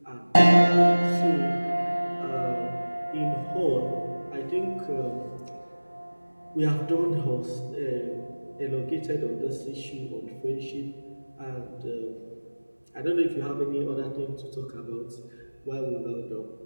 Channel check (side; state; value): both; inverted; correlation -1.00